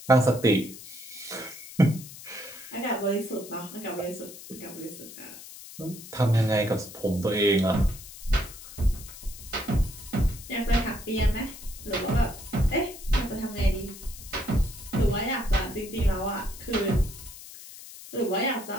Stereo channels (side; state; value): left; noise; hiss, 15 dB below the sound